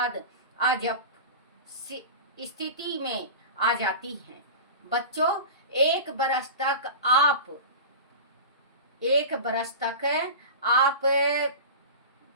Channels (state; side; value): inverted; both; correlation -0.30